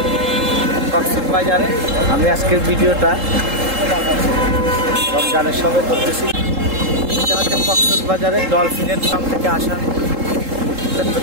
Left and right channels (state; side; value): late; left; 3.7 ms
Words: কক্সবাজারে। আমি আজকের ভিডিওটা রমজানের সময় করতেছি। এটা হচ্ছে কক্সবাজারে ডলফিনের ফার্ম থেকে আসা